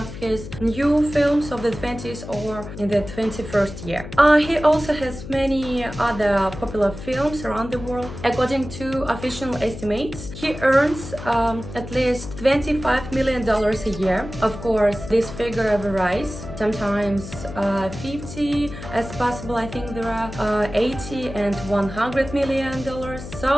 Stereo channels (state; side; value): noise; left; hum, 11 dB below the sound